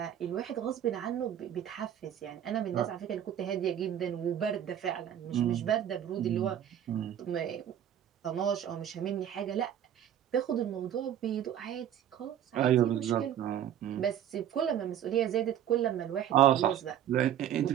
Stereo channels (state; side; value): quieter; left; 10.4 dB